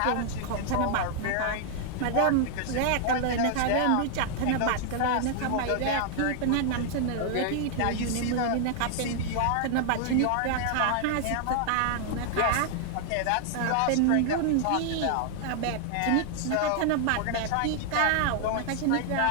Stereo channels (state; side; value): different; both; correlation 0.00